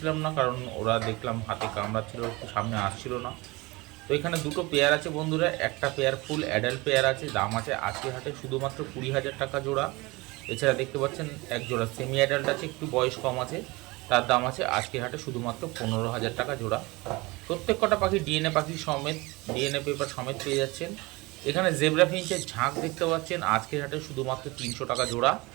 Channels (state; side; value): quieter; left; 23.4 dB